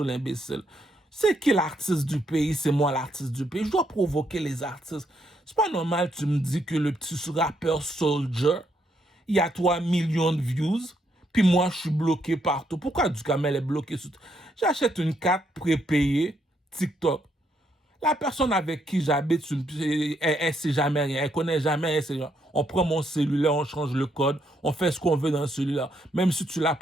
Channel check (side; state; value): both; normal; correlation 0.75